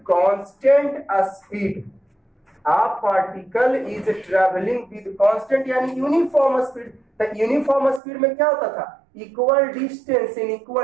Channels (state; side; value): drops out; left; at 8.0 s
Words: constant speed. A particle is travelling with constant यानी यूनिफॉर्म स्पीड। तो यूनिफॉर्म स्पीड में क्या होता था, equal distance in